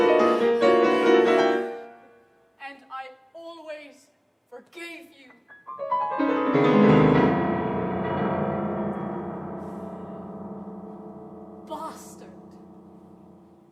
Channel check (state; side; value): identical; both; correlation 1.00